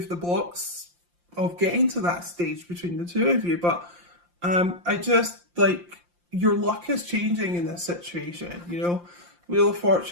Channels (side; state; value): left; late; 5.7 ms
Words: the blocks of getting to that stage between the two of you. But I just, like, your luck is changing in this situation, you know? Wheel of